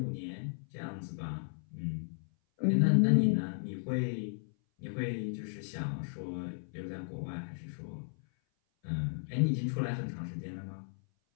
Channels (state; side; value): silent; right; 55 dB below the other